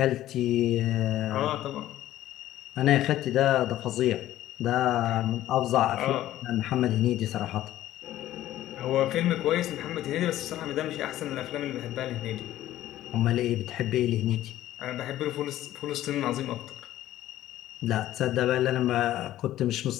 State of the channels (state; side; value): quieter; right; 13.8 dB